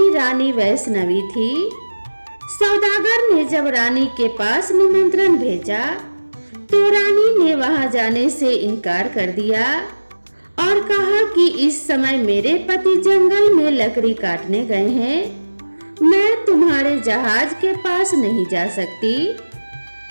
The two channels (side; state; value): both; inverted; correlation -1.00